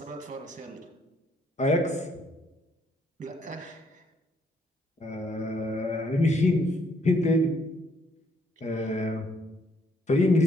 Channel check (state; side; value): normal; both; correlation 0.69